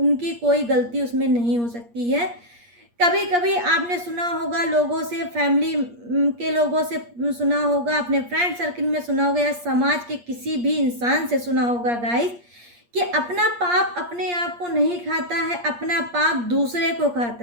कोई गलती उसमें नहीं हो सकती है। कभी कभी आपने सुना होगा लोगों से, फैमिली के लोगों से सुना होगा, अपने फ्रेंड सर्किल में सुना होगा या समाज के किसी भी इंसान से सुना होगा गाइस, कि अपना पाप अपने आप को नहीं खाता है, अपना पाप दूसरे को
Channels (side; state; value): left; late; 8.5 ms